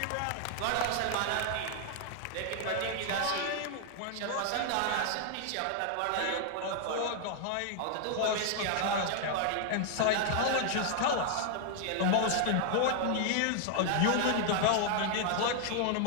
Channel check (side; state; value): both; different; correlation 0.00